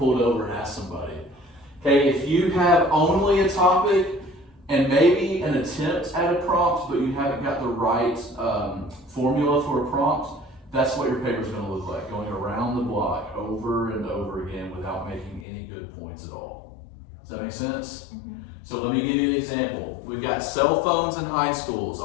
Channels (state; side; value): drops out; right; at 15.5 s